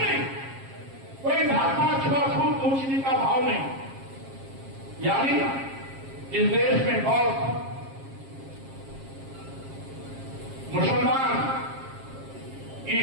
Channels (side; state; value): left; late; 7.4 ms